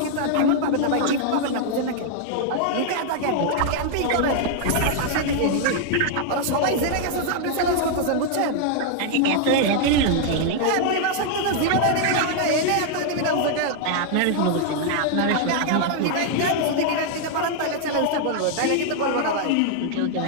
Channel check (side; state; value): both; different; correlation 0.00